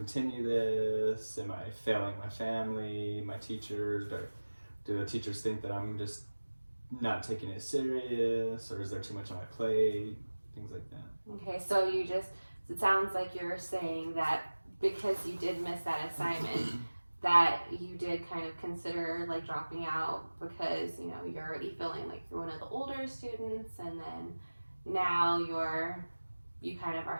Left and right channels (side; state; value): both; inverted; correlation -1.00